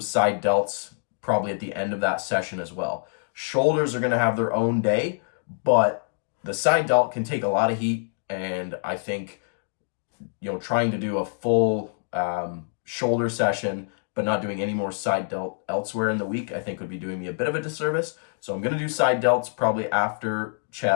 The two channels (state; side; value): silent; right; digital silence